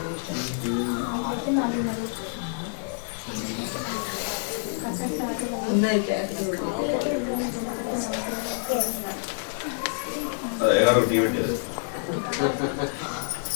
ఎవరు టీ పెట్టారు?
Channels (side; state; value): right; silent; digital silence